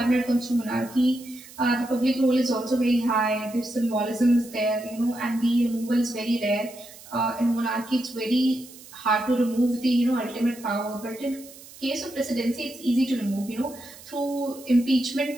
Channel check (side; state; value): right; noise; hiss, 19 dB below the sound